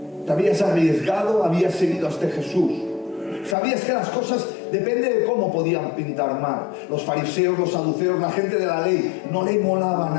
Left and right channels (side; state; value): right; drops out; at 3.6 s